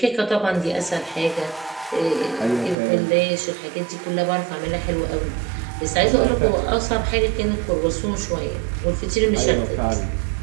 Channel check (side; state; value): left; drops out; at 2.8 s